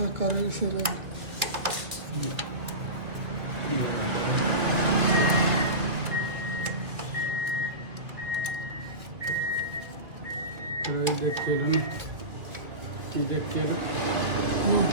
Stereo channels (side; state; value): left; late; 2.0 ms